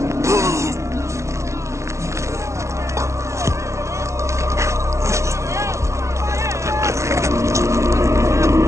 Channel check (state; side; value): late; left; 0.14 ms